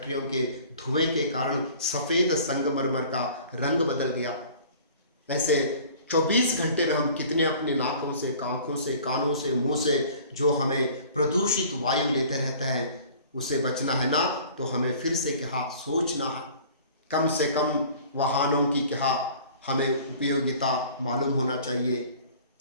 के धुएं के कारण सफ़ेद संगमरमर का रंग बदल गया। ऐसे 24 घंटे में हम कितने अपने नाकों से, आँखों से, कानों से, मुंह से जो हमें प्रदूषित वायु लेते रहते हैं, उसे बचना है ना, तो हमें फिर से क्या सोचना है। कम से कम वाहनों की क्या हमें उपयोगिता मालूम होना चाहिए।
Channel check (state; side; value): inverted; both; correlation -0.48